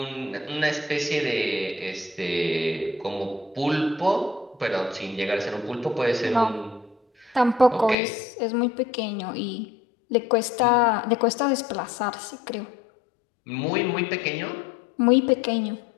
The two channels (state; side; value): drops out; right; at 8.0 s